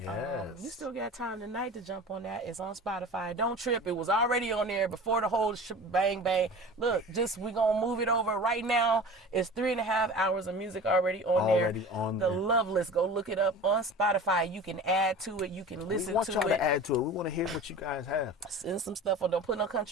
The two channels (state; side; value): normal; both; correlation 0.37